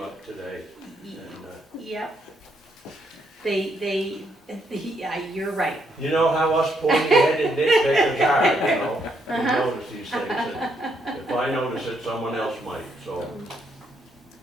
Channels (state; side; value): normal; both; correlation 0.75